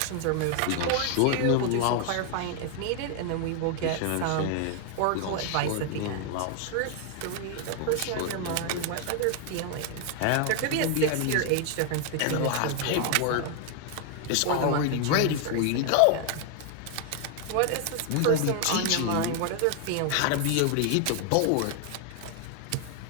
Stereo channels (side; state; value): both; different; correlation 0.00